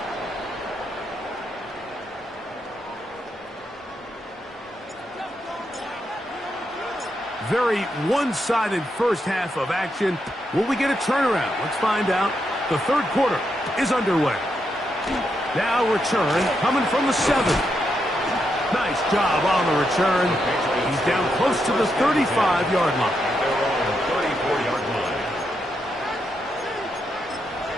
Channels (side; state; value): both; normal; correlation 0.82